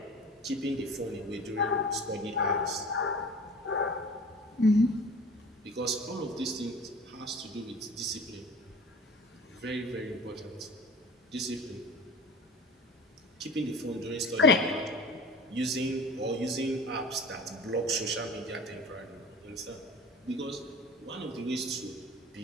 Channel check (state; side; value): normal; both; correlation 0.39